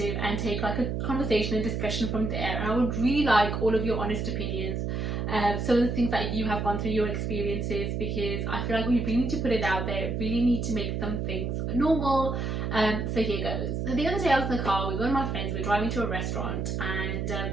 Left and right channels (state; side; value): noise; right; hum, 1 dB below the sound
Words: and take like a conversation and discussion from there. And I would really like all of your honest opinions, some of the things that you have gone through, your experiences, because I feel like we really need to put it out there, really need to make some things normal. So here goes. So the other day I was in the car, we were with my friends, we were driving to a restaurant, and